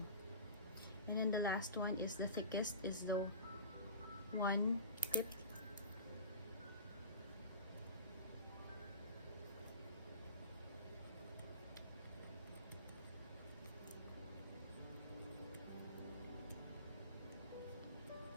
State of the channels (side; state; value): both; inverted; correlation -0.34